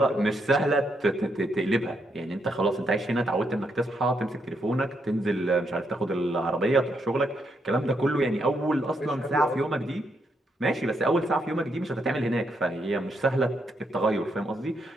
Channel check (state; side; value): normal; both; correlation 0.78